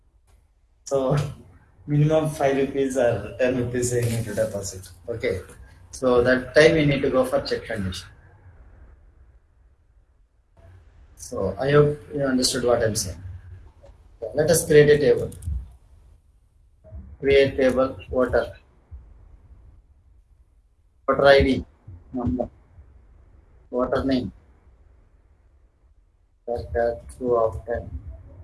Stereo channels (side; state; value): both; identical; correlation 1.00